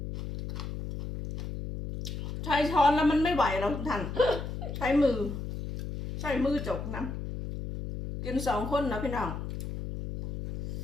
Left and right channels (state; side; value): noise; left; hum, 6 dB below the sound